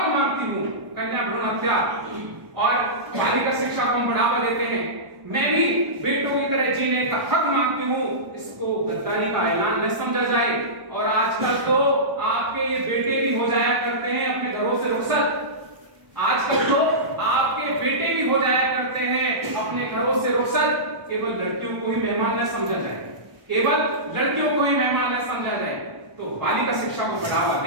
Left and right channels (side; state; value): left; late; 1.1 ms